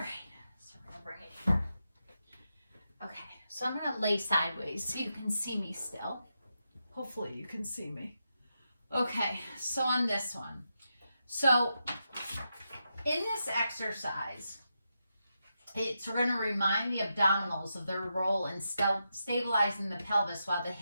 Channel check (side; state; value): both; inverted; correlation -0.86